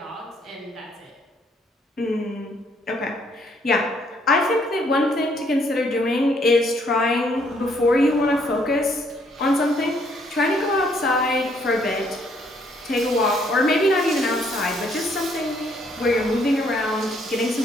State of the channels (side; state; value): both; normal; correlation 0.68